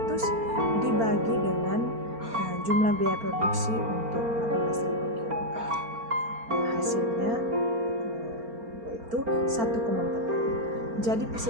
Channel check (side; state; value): left; late; 4.4 ms